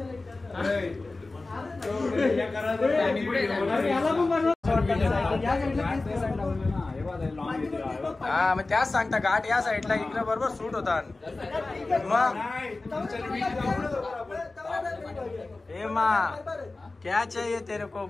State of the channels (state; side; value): quieter; right; 3.3 dB